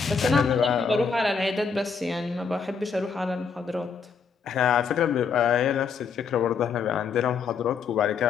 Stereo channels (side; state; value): right; quieter; 5.8 dB